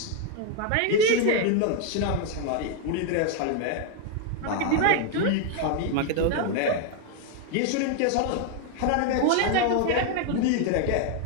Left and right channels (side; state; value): both; different; correlation 0.01